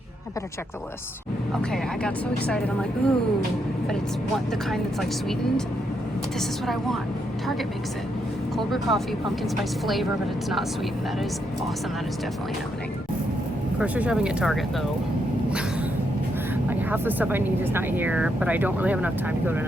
I better check the list. Okay, I got so excited. I'm like, ooh, but it's the kind that's like sweetened. This is what I want. Target makes it. Cold brew coffee, pumpkin spice flavor, but it's not sweetened. That is awesome. That is definitely happening. Grocery shopping at Target though. Like half the stuff I need is not here, but I don't really have enough time to go to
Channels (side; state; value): both; normal; correlation 0.79